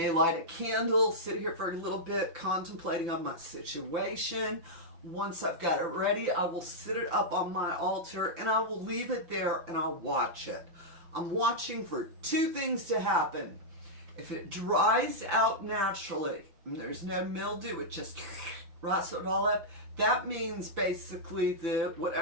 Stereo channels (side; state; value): left; late; 5.9 ms